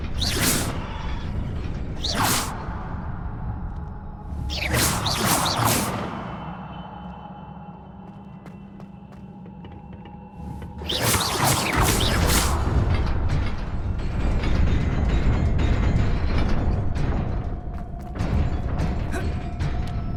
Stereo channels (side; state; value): both; identical; correlation 1.00